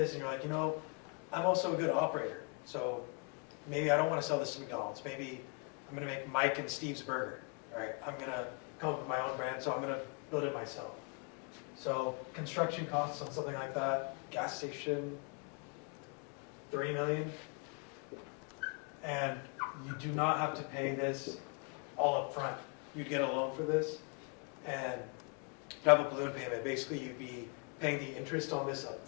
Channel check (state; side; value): quieter; right; 35.7 dB